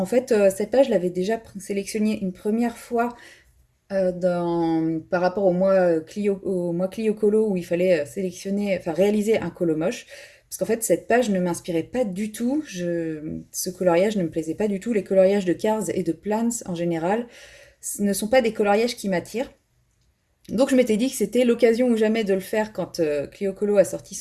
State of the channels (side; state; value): both; identical; correlation 1.00